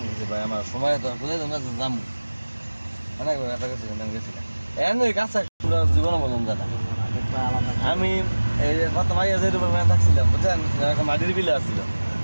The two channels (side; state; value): both; inverted; correlation -1.00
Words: নিজে ভাই আমার সময় তো কোথায় তোমরা যাবো অনেক ব্যথা করছিলাম আমি গেছিলাম ওই কাছে জীবনে বললাম দাদা আমি এই প্রথম আগে যে রুমের মেয়ে থাকছিলাম বুঝছেন মাটির বিলে আসছিল